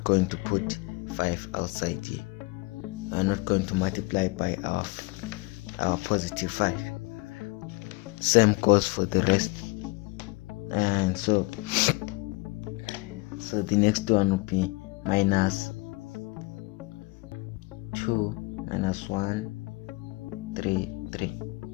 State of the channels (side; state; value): right; quieter; 25.1 dB